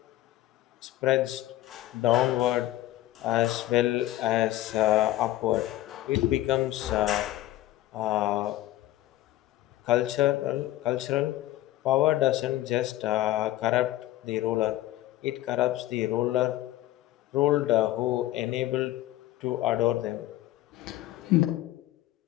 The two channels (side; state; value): right; quieter; 15.3 dB